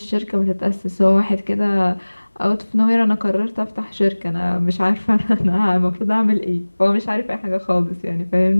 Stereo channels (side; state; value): both; inverted; correlation -1.00